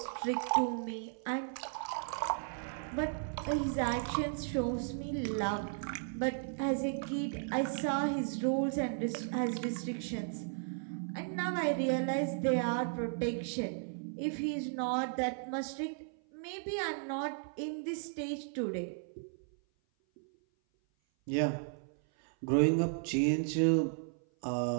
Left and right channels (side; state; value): left; silent; 54 dB below the other